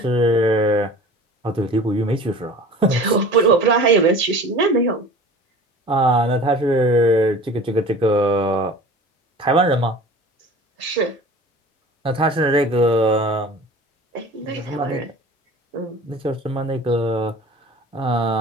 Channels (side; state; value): both; normal; correlation 0.41